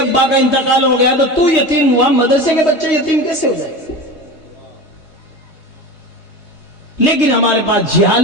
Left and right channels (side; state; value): right; late; 3.2 ms